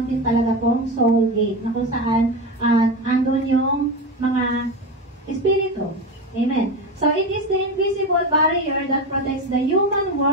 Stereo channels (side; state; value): both; normal; correlation 0.20